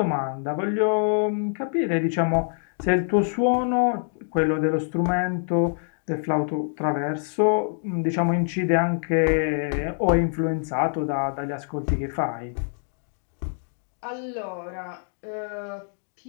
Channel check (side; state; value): right; silent; digital silence